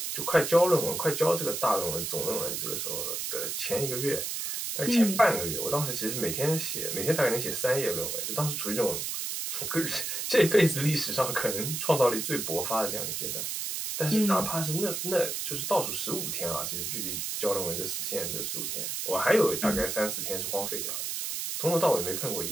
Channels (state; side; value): noise; right; hiss, 3 dB below the sound